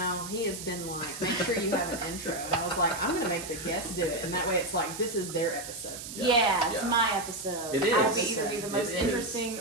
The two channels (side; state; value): right; noise; hiss, 10 dB below the sound